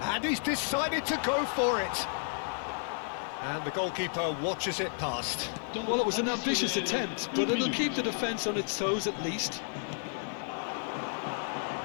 he's decided to go for it. And the goalkeeper watches it past. Well, it was an ambitious attempt, but it'll keep the defence on its toes at least.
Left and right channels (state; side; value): silent; right; digital silence